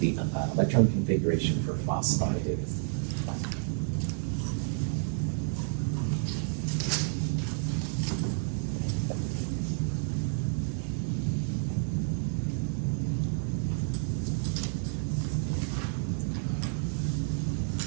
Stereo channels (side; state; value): left; silent; digital silence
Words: electron configuration for phosphide is.